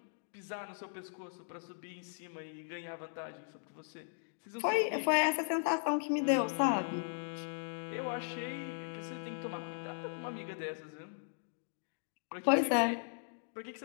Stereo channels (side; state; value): right; silent; digital silence